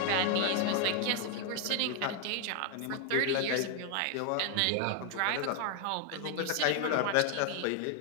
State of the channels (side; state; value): both; different; correlation 0.00